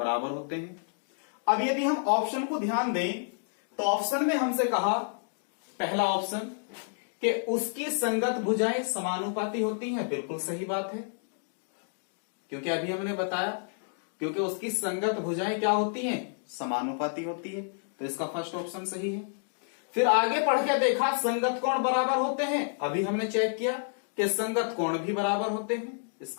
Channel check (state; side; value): silent; right; digital silence